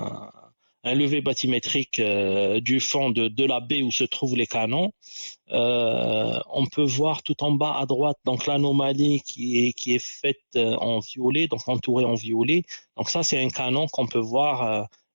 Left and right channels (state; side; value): inverted; both; correlation -1.00